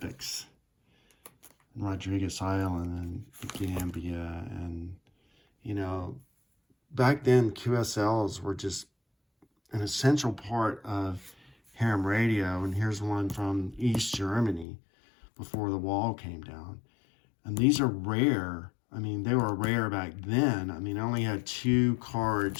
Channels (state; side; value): drops out; right; at 14.7 s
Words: in Rodriguez Island and Gambia. And, you know, back then QSLs were just an essential part of ham radio. And here's one from East Germany before the wall came down. And these are rare. I mean, they were rare back then. I mean, I only had 2